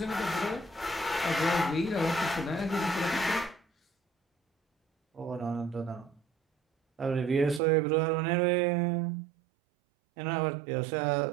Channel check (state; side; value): drops out; left; at 7.6 s